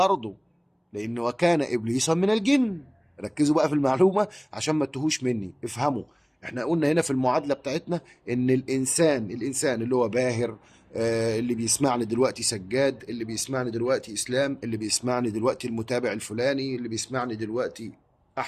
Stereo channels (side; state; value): both; identical; correlation 1.00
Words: لانه وكان ابليس من الجن. ركزوا بقى في المعلومه عشان ما تتوهوش مني، افهموا. احنا قلنا هنا في المعادله بتاعتنا ان الانسان اللي هو باهر، اللي بيسمعني دلوقتي سجاد، اللي بيسمعني دلوقتي اسلام، اللي بيسمعني دلوقتي المتابع الفلاني، اللي بيسمعني دلوقتي